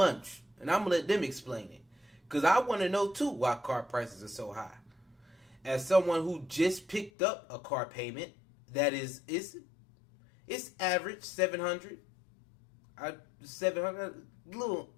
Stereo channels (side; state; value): right; drops out; at 7.1 s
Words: And I'm going to let them explain it. Because I want to know, too, why car prices are so high. As someone who just picked up a car payment that is it's average $700. $700, a little